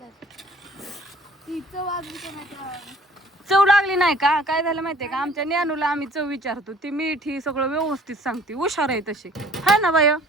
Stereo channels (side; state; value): both; normal; correlation 0.53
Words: ती चव अजून कोणाच्या चव लागली नाही का? काय झालं माहितीये का, आमच्या ज्ञानूला आम्ही चव विचारतो, ती मीठ ही सगळं व्यवस्थित सांगते, हुशार आहे तशी, हाय ना बाय?